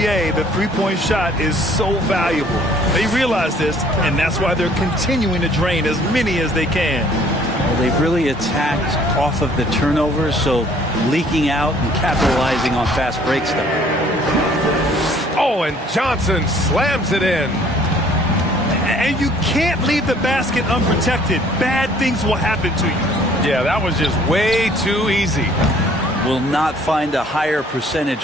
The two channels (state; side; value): normal; both; correlation 0.58